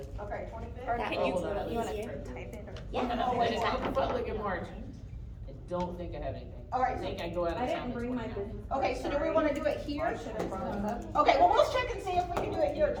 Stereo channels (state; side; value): identical; both; correlation 1.00